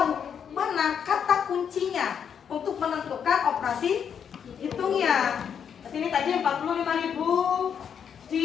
mana kata kuncinya untuk menentukan operasi hitungnya. Ini tadi 45.000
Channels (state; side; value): quieter; right; 7.7 dB